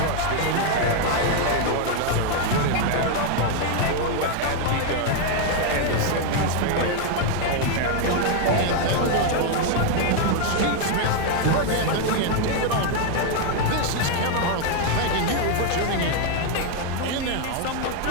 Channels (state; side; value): different; both; correlation 0.01